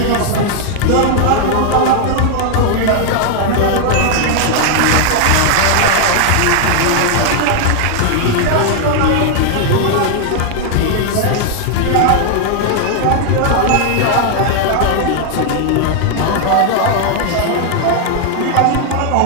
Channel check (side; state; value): both; different; correlation 0.00